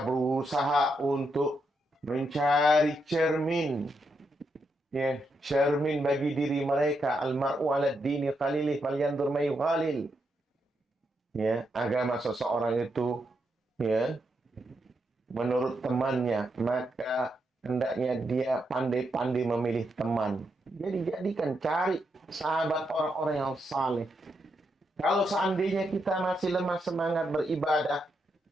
berusaha untuk mencari cermin. Ya, cermin bagi diri mereka. Al-mar'u 'ala ad-dini qalilih falyanzur may yughalil. Ya, agama seseorang itu, ya, menurut temannya, maka hendaknya dia pandai-pandai memilih teman. Jadi jadikan cari sahabat orang-orang yang saleh. Kalau seandainya kita masih lemah semangat beribadah,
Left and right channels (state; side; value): normal; both; correlation 0.81